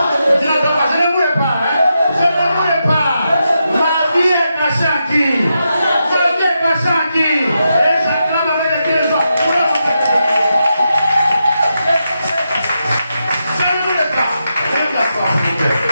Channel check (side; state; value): both; inverted; correlation -0.86